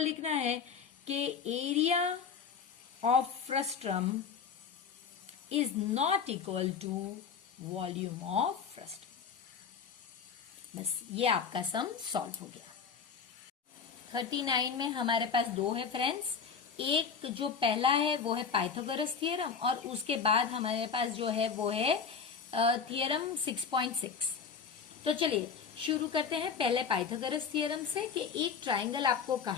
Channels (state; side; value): quieter; right; 6.2 dB